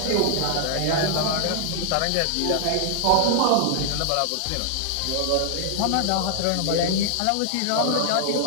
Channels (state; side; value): different; both; correlation 0.00